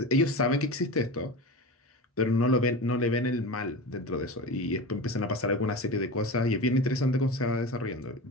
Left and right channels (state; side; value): normal; both; correlation 0.28